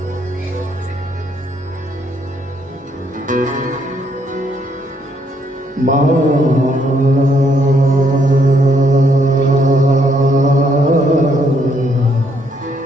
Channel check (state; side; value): normal; both; correlation 0.72